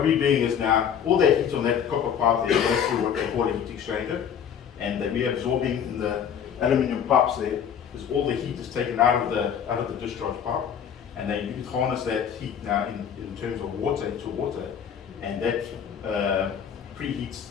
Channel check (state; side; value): quieter; right; 8.1 dB